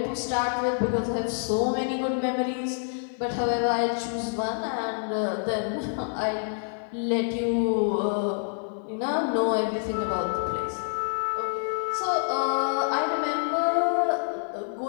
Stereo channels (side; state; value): right; silent; 60 dB below the other